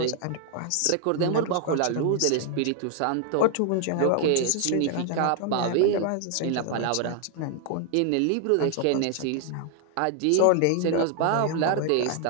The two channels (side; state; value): both; different; correlation 0.00